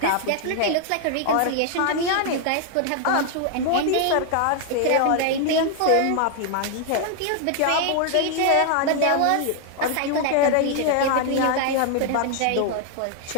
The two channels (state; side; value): different; both; correlation 0.00